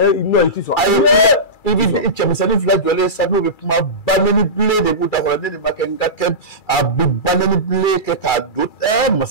non i tɛ sɔn. a ye kun i bɛ cɛmisɛnnin fila jɔlen sa n'o bɛ kuma banɛni bilen de b'u da kɔrɔ ne de ma kɛ n ka kɛ a bɛ banɛni bilen kɛ k'a don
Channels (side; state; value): right; late; 2.3 ms